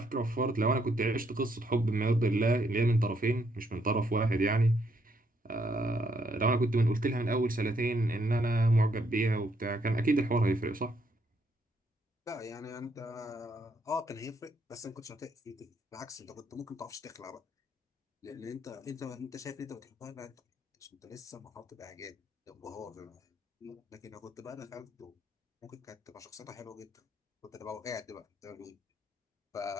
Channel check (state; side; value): normal; both; correlation 0.73